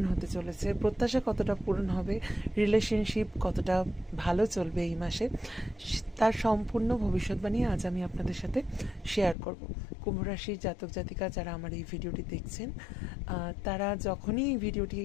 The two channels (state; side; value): drops out; right; at 9.3 s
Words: হতে চলেছে, প্রত্যাশা কতটা পূরণ হবে, রিলেশনশিপ কতটা ভালো চলবে এই মাসে, তার সম্পূর্ণ ভবিষ্যৎবাণী আজ আমি আপনাদের সাথে শেয়ার করব। কুম্ভ রাশির জাতক জাতিকা যারা আমার এই ভিডিওটি দেখছেন, তারা যখনই এই ভিডিওটি